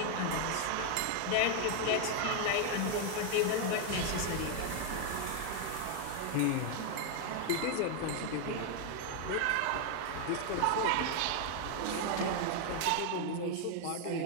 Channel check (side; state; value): both; different; correlation 0.00